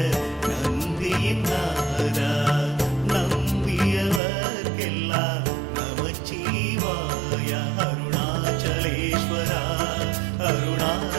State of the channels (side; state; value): left; drops out; at 4.2 s